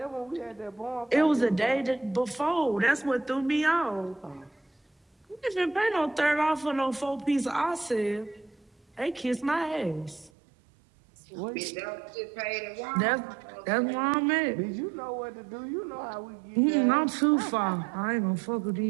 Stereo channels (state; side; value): drops out; left; at 10.3 s